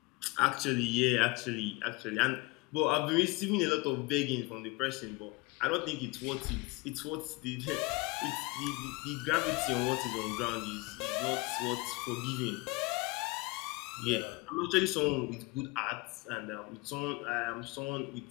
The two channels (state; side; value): quieter; right; 24.2 dB